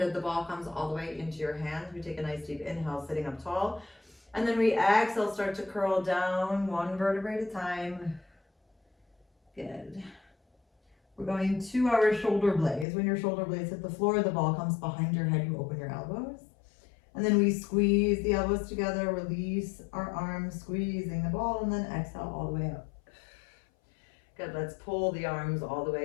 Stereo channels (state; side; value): drops out; right; at 12.9 s